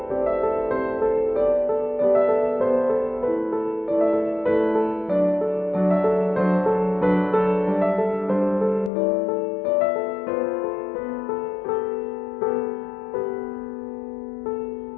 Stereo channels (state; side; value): drops out; right; at 8.9 s